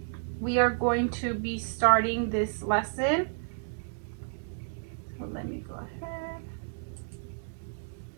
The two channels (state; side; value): silent; left; digital silence